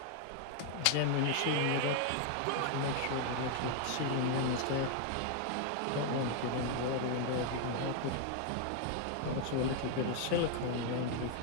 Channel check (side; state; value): both; different; correlation 0.00